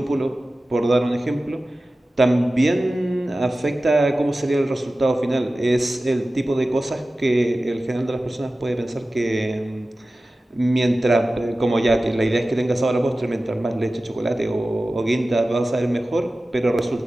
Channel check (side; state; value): both; normal; correlation 0.96